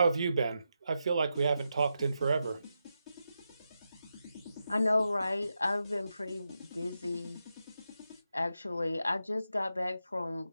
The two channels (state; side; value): inverted; both; correlation -0.87